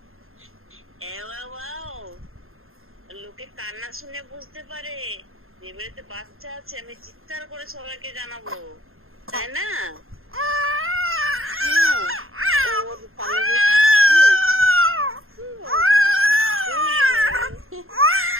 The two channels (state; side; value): late; left; 0.61 ms